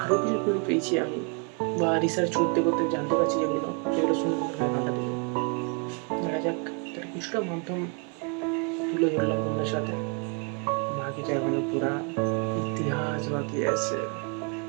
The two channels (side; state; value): left; quieter; 36.0 dB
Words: আরও কিছু ক্লু পেয়েছি আমি, বা রিসার্চ করতে করতে জানতে পারছি যেগুলো, সেগুলো শুনে কান্না দেবে। দেখা যাক, তার কিছুটা মাধ্যম তুলে ধরলাম তোমাদের সাথে, বাকিটা এখনো পুরা ইতিহাস বাকি আছে।